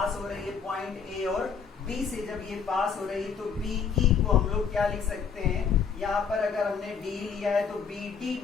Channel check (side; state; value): right; quieter; 6.3 dB